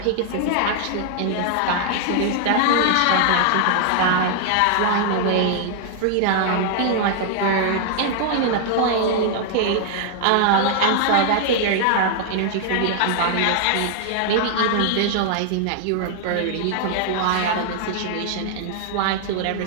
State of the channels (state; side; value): different; both; correlation 0.00